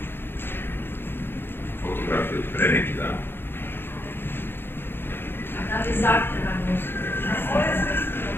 Fotografije od pre neki dan. A da li zahtevano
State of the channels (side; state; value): right; late; 0.10 ms